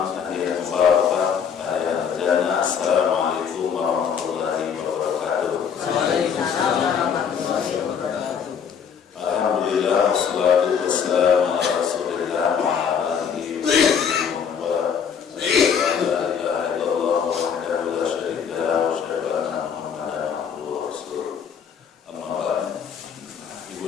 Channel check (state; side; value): quieter; right; 7.2 dB